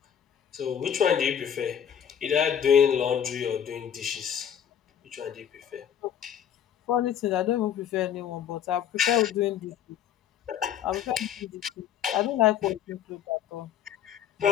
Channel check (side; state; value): right; quieter; 9.2 dB